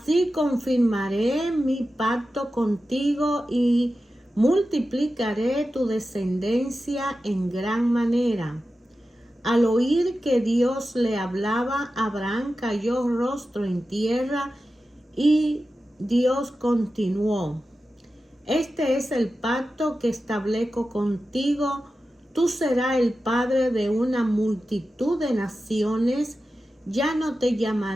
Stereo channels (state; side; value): normal; both; correlation 0.93